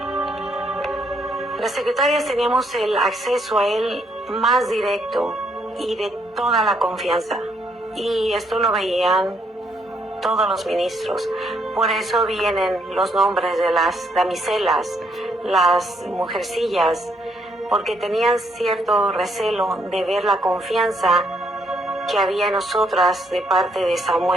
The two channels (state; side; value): normal; both; correlation 0.73